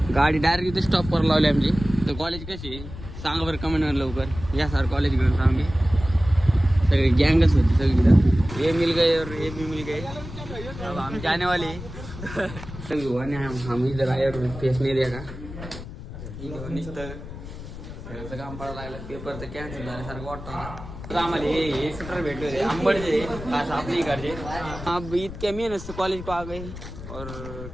गाडी डायरेक्ट इथे स्टॉपवर लावली आमची. तर कॉलेज कशी आहे सांगा बरं कमेंटवर लवकर. या सर कॉलेज घेऊन सांगे सगळी गँगच होती सगळी. ये मिल गए और ये भी मिल गए, अब हम जाने वाले. सगळी हम इधर आए और फेस नहीं देखा. नुसतं काम पडायला लागलं. पेपर तर कॅन्सल झाल्यासारखं वाटतं. आम्हाला हे स्वेटर भेटले होते आंबडचे, खास आपली इकडचे. अब इतक्या मेहनत से कॉलेज को आ गए और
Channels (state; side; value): noise; left; rumble, 11 dB below the sound